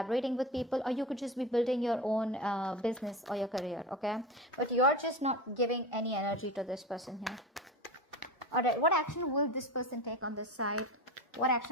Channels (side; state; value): both; normal; correlation 0.26